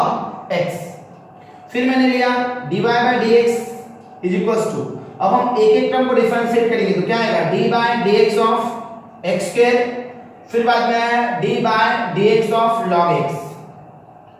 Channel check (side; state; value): both; identical; correlation 1.00